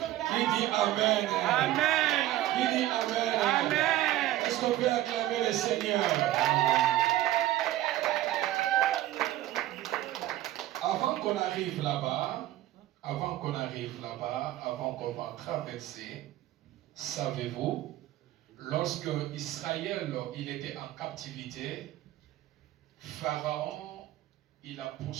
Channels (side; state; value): left; quieter; 14.7 dB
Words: Qui dit amen? Amen. Qui dit amen? Amen. Est-ce qu'on peut acclamer le Seigneur? Avant qu'on arrive là-bas, avant qu'on va traverser, savez-vous, lorsque Israël il était en captivité, Pharaon il a